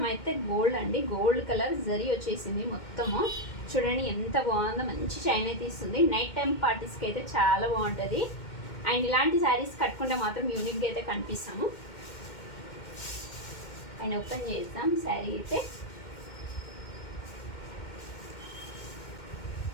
అయితే గోల్డ్ అండి, గోల్డ్ కలర్ జరీ వచ్చేసింది మొత్తము. చూడండి ఎంత బాగుందో, మంచి షైన్ అయితే ఇస్తుంది. నైట్ టైం పార్టీస్కి అయితే చాలా బాగుంటుంది. అండ్ ఇలాంటి శారీస్ కట్టుకుంటే మాత్రం యూనిక్గా అయితే కనిపిస్తాము. అండ్ ఓపెన్ చేద్దాం శారీ అయితే.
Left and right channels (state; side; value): late; right; 2.1 ms